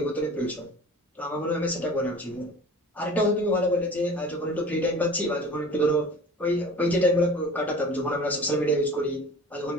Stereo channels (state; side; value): normal; both; correlation 0.41